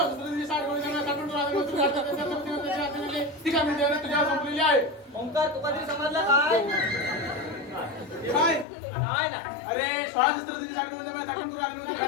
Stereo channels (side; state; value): right; drops out; at 8.7 s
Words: गोळी सांगा काटून तुला ती कामगिरी देवाने तुझ्यावर संपलेली आहे ओंकार तुका तरी समजलं काय? काय नाही ना. अरे 16 शस्त्र तिने साठ गोळी सांगा काटून तुला